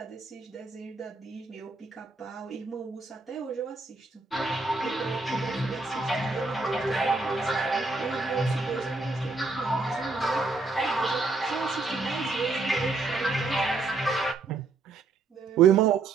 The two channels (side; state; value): left; quieter; 3.8 dB